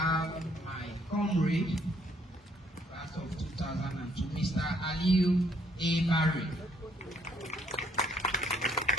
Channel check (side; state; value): both; normal; correlation 0.67